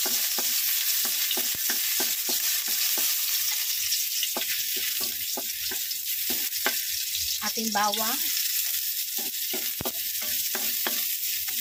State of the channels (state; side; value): identical; both; correlation 1.00